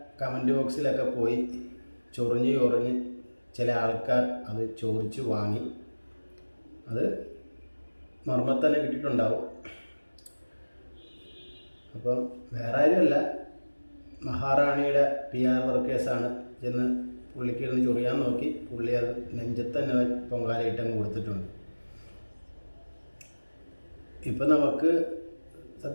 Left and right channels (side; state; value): both; inverted; correlation -1.00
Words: കമൻറ്റ് ബോക്സിലൊക്കെ പോയി ചൊറിഞ്ഞ് ചില ആൾക്കാർ അത് ചോദിച്ചു വാങ്ങി. അത് മർമ്മത്തന്നെ കിട്ടിയിട്ടുണ്ടാവും. അപ്പം വേറെ ആരുമല്ല, മഹാറാണിയുടെ PR വർക്കേഴ്സാണ് ചെന്ന് പുള്ളിക്ക് ഇരുന്ന് ചൊറിയാൻ നോക്കി. പുള്ളി അത് നെഞ്ചത്ത് തന്നെ പൊങ്കാലയിട്ടങ്ങ് കൊടുത്തിട്ടുണ്ട്. ഇപ്പം നമുക്ക്